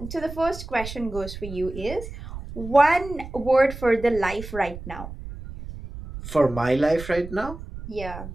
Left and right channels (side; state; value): right; noise; rumble, 11 dB below the sound